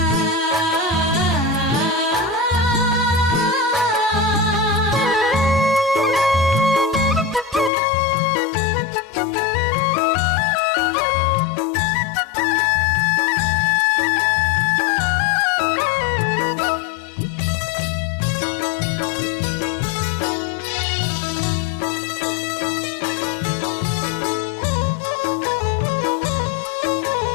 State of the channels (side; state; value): right; drops out; at 7.7 s